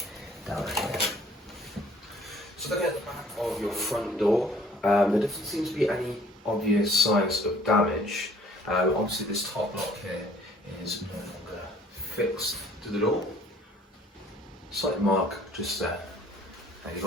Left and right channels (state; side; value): normal; both; correlation 0.56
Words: down here. So looking at the back of your front door, there doesn't seem to be any obvious signs of damage. Obviously this top lock here is no longer fixed to the door. Slight mark just there. And you've